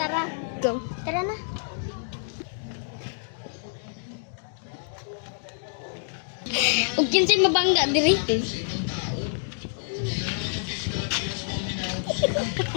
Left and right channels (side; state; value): right; silent; digital silence